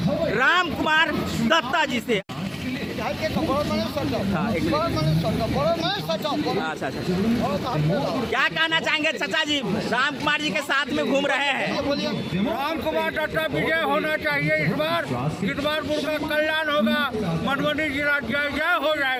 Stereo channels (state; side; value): identical; both; correlation 1.00